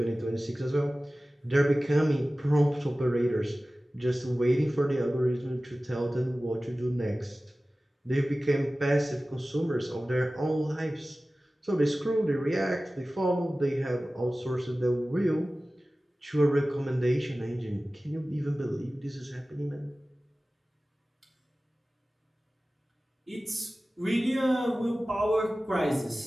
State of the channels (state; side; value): normal; both; correlation 0.96